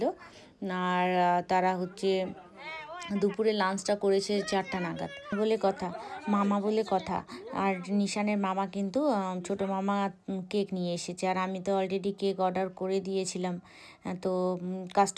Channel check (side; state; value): both; identical; correlation 1.00